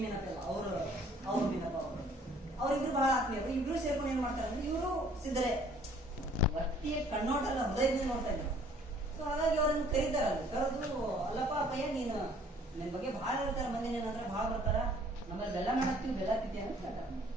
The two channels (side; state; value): both; normal; correlation 0.57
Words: ಮೀನಪ್ಪ ಇಲ್ಲ, ಅವ್ರು ಮೀನಪ್ಪ ಅವ್ರಿಬ್ರು ಬಹಳ ಆತ್ಮೀಯರು. ಇಬ್ರು ಸೇರ್ಕೊಂಡು ಏನ್ ಮಾಡ್ತಾರೆ ಅಂದ್ರೆ, ಇವರು ಸಿದ್ಧರೇ, ವ್ಯಕ್ತಿಯ ಕಣ್ಣೋಟಲ್ಲ ಹೃದಯದಿಂದ ನೋಡ್ತಾ ಇದ್ರು. ಸೊ ಹಾಗಾಗಿ ಅವ್ರನ್ನ ಕರೀತಾರಲ್ಲ, ಕರೆದು ಅಲ್ಲಪ್ಪ ಅಪ್ಪಯ್ಯ ನೀನು ನಿನ್ ಬಗ್ಗೆ ಬಹಳ ಹೇಳ್ತಾರೆ, ಮಂದಿ ಏನಂದ್ರೆ ಬಹಳ ಬರ್ತಾರ, ನಮ್ಮಲ್ಲಿ ಬೆಲ್ಲ ಮಾಡಾಕ್ತಿವಿ, ಬೆಲ್ಲ ತಿಂತೀವಿ ಅಂತ ಹೇಳ್ತಾರೆ.